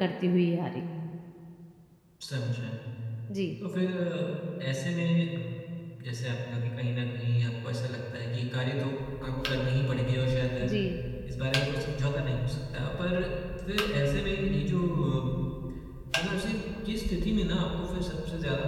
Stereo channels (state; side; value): identical; both; correlation 1.00